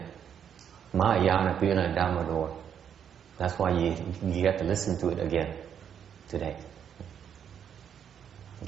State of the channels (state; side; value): quieter; left; 8.4 dB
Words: Mahayana Pureland Dharma door. That's why you get to listen to it again today.